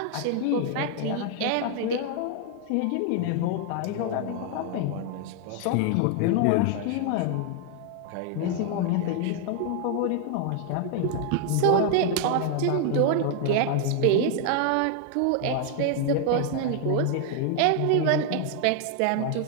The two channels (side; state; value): both; different; correlation 0.00